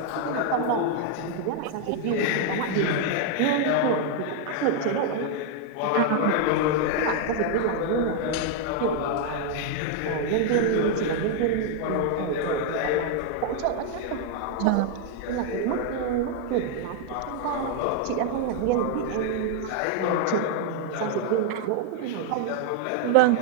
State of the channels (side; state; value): both; different; correlation 0.00